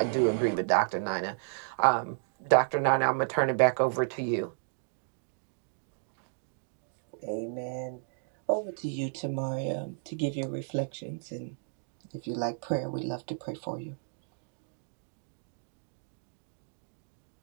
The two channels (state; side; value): silent; left; digital silence